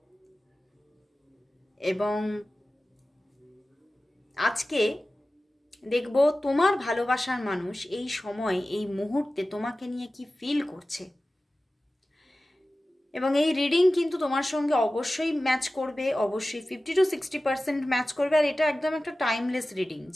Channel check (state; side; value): normal; both; correlation 0.96